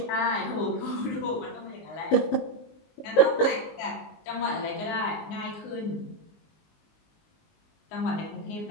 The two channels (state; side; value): late; right; 19 ms